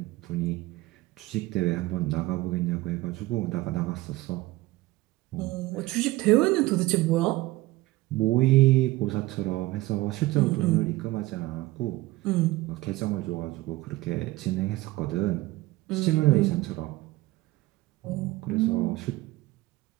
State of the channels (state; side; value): quieter; left; 18.8 dB